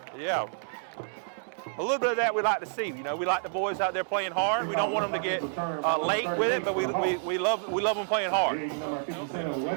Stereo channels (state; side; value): silent; left; 59 dB below the other